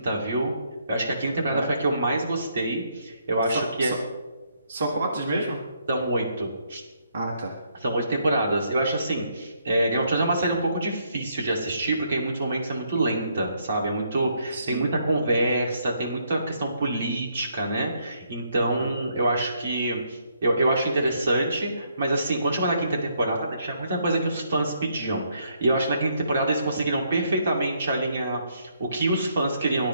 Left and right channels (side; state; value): both; inverted; correlation -0.72